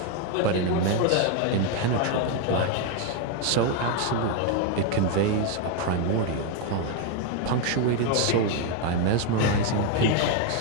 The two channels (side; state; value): both; different; correlation 0.01